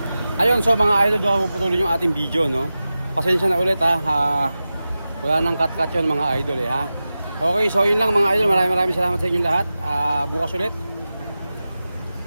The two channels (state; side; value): inverted; both; correlation -0.94